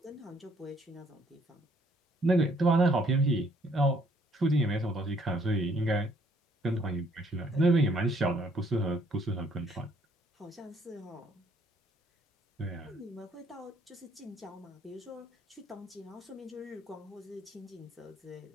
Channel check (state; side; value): normal; both; correlation 0.65